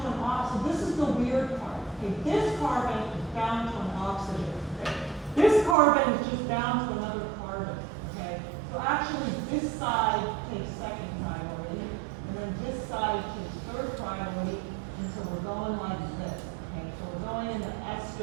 an oxygen. This is the weird part. Okay? This carbon is bound to an oxygen. Okay? This carbon is just bound to another carbon. Okay? So actually, this side takes 2nd priority, and then this side takes 3rd priority, and so we're going like this. Okay? So we're going in the S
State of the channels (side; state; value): left; drops out; at 5.8 s